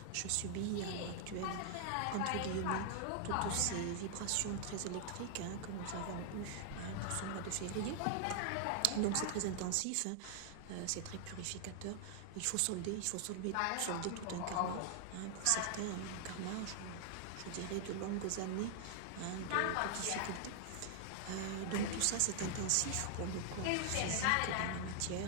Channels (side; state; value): both; different; correlation 0.00